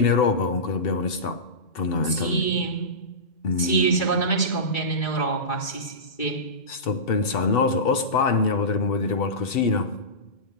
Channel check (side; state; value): right; late; 2.3 ms